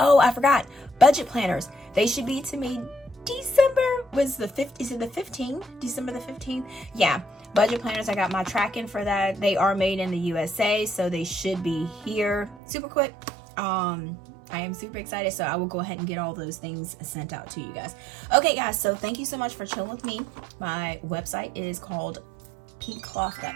I forgot. Budget planners. They should be to me December, was the 5th, is it the 15th? December the 15th? Yeah. Budget planners, I got my tracking for that. They are made in the USA, so they should be here super quick. I am super excited, so I will go ahead and get all those things sent out to you guys. Okay, guys, so thank you so much for chilling with me. My website is called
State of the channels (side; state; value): left; drops out; at 12.6 s